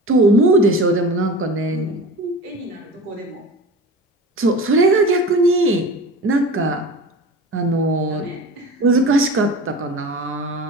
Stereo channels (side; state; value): both; normal; correlation 0.34